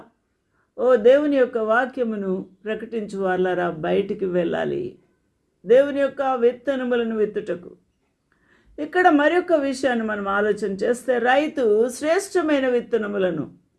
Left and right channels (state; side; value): identical; both; correlation 1.00